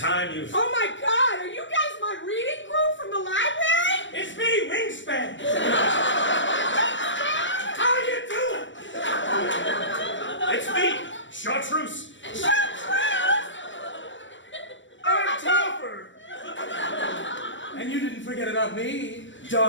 you've... Oh my God, are you guys my reading group from the library? It's me, Wingspan! How you doing? It's me, Chartreuse. I'm Topper! And you didn't forget about me,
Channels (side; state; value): right; late; 0.54 ms